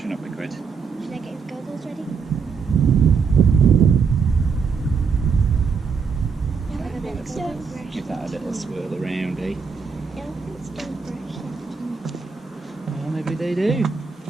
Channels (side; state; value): left; quieter; 5.6 dB